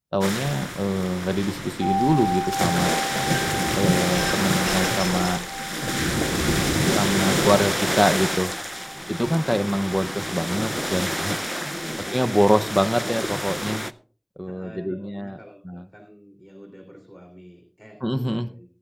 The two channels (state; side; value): identical; both; correlation 1.00